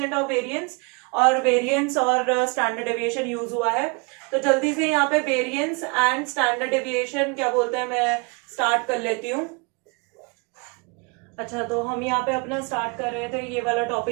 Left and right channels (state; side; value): quieter; left; 31.7 dB